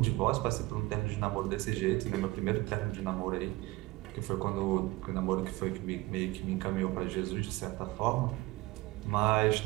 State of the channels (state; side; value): quieter; left; 20.4 dB